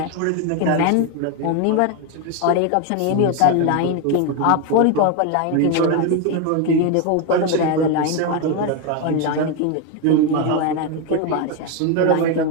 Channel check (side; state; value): both; different; correlation 0.02